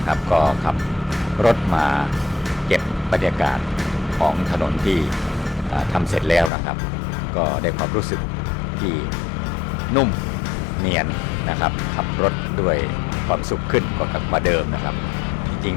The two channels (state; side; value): drops out; right; at 6.5 s